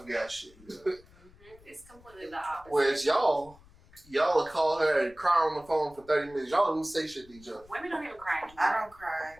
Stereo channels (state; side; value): noise; left; rumble, 25 dB below the sound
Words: guy shit. It's completely the opposite. Whereas y'all will call her and cry on the phone for 30 minutes. Y'all don't even say shit to each other. Women don't even cry anymore. I don't cry.